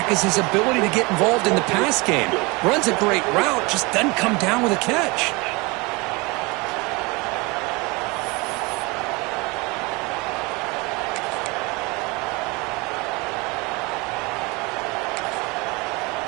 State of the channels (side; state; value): left; quieter; 26.1 dB